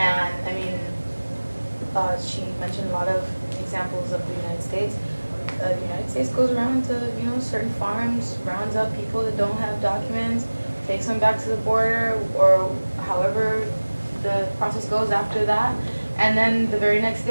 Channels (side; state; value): both; inverted; correlation -1.00